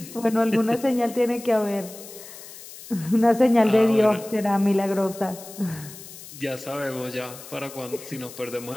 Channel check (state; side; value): noise; left; hiss, 16 dB below the sound